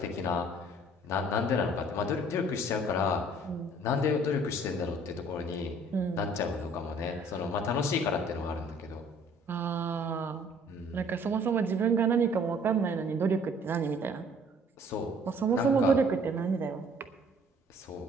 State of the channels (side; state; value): both; normal; correlation 0.56